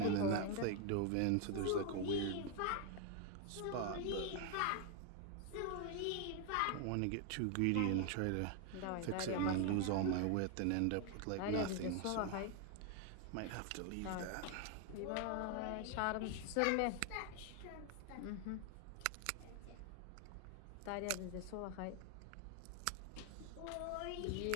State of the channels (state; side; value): different; both; correlation 0.01